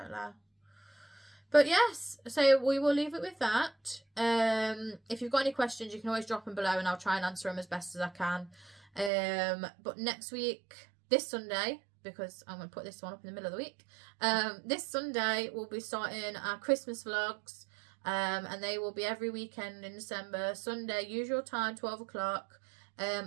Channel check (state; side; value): drops out; left; at 9.1 s